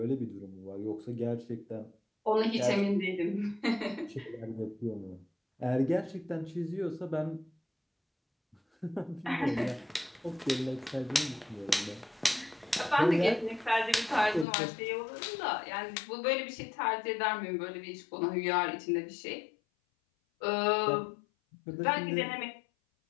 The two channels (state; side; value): drops out; right; at 14.5 s